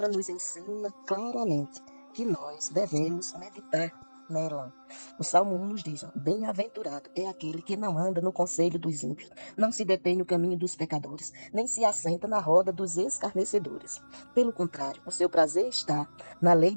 nos ensina claramente que nós devemos meditar nela. O Salmo 1 nos diz: bem-aventurado é aquele que não anda no conselho dos ímpios, não se detém no caminho dos pecadores, nem se assenta na roda dos escarnecedores. Pelo contrário, o seu prazer está na lei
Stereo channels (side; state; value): both; inverted; correlation -1.00